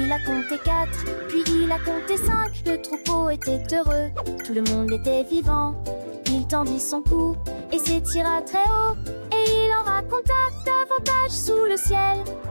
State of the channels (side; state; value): both; inverted; correlation -1.00